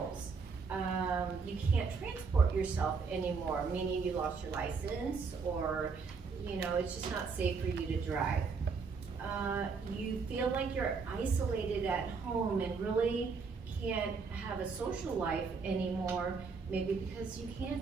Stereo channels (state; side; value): quieter; left; 5.0 dB